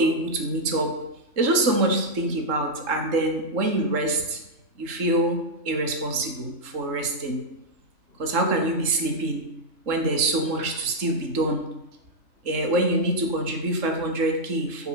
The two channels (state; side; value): late; left; 3.7 ms